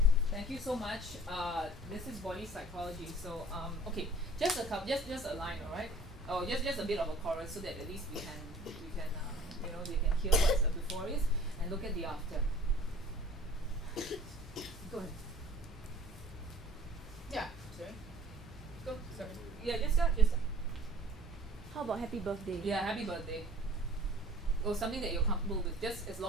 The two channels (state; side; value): normal; both; correlation 0.49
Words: Thank you so much. This is body psychology. So okay, just a couple, just a line, all right? Oh, just a bit of a chorus so that at least we can you know they can hear what the before is and look at the after. Go ahead. Yeah. Sorry. Go. Sorry. Yeah. Just start. Just start. How about happy birthday? Yeah. Happy birthday. Or something that you're comfortable with, just as